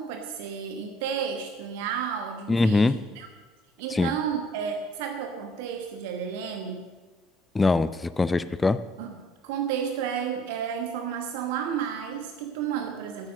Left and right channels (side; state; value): both; normal; correlation 0.59